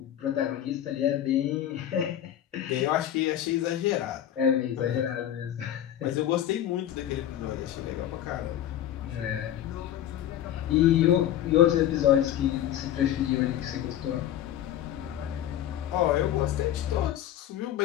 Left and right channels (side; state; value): right; quieter; 11.4 dB